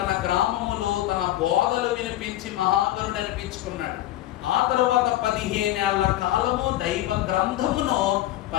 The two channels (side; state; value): right; quieter; 14.3 dB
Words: గ్రామములో తన బోధలు వినిపించి మహాగరుడు అనిపించుకున్నాడు. ఆ తరువాత 15 ఏళ్ల కాలము దైవ గ్రంథమును